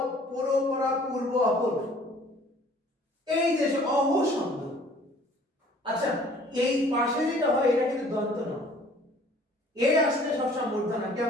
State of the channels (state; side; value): normal; both; correlation 0.54